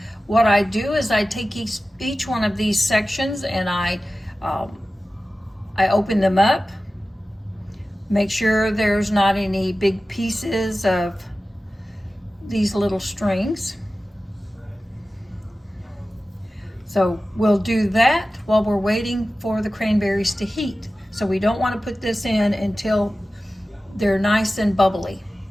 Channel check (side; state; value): both; normal; correlation 0.95